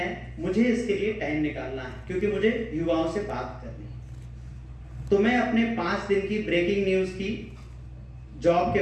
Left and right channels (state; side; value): identical; both; correlation 1.00